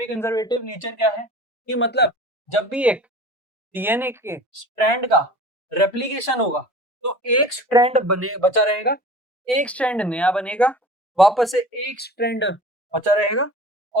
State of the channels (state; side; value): normal; both; correlation 0.41